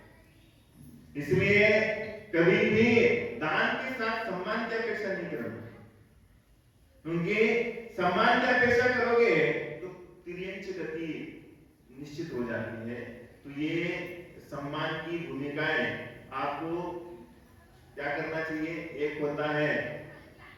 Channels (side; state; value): both; identical; correlation 1.00